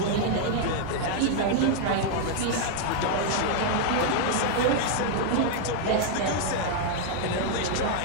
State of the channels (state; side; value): different; both; correlation 0.00